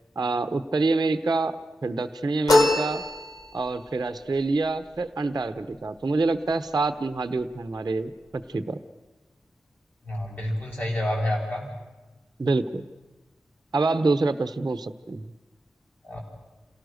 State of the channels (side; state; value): both; normal; correlation 0.89